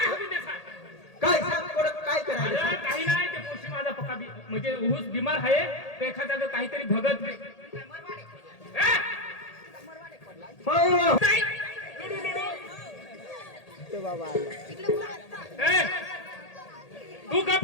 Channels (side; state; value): right; late; 1.8 ms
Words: हवी ते सांग काय सांग कोण काय करायचं अरे काही नाही ते पोशी माझा पक्का म्हणजे ऊस बिमार आहे ते एखाद्या काहीतरी भगत ए! नाही. ए! तू गप